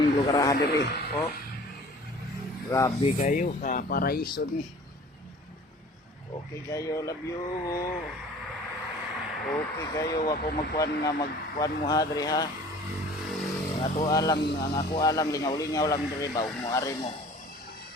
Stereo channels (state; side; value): normal; both; correlation 0.46